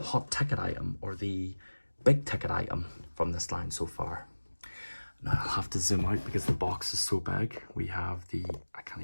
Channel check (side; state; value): both; inverted; correlation -1.00